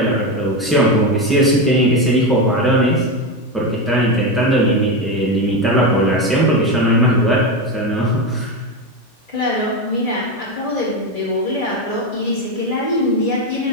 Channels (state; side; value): normal; both; correlation 0.14